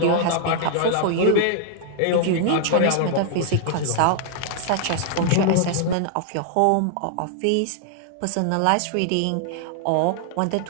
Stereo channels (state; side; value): different; both; correlation -0.01